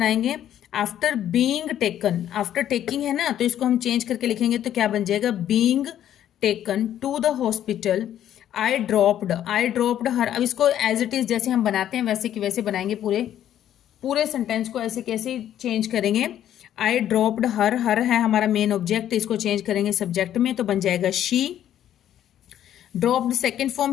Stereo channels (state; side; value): quieter; right; 11.1 dB